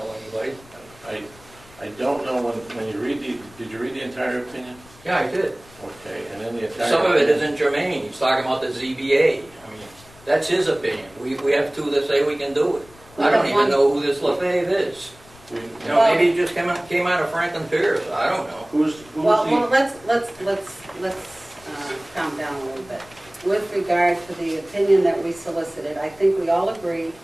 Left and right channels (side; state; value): left; noise; rumble, 24 dB below the sound